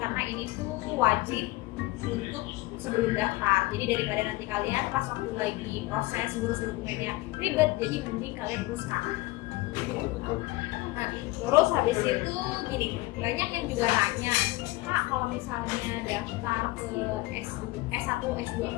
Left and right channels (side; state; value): right; quieter; 20.3 dB